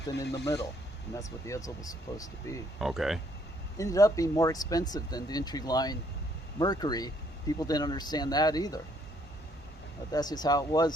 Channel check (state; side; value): normal; both; correlation 0.67